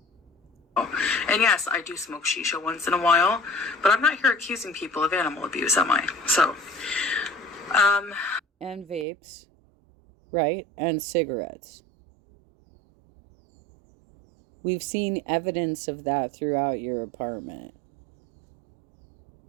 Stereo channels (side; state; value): left; drops out; at 9.1 s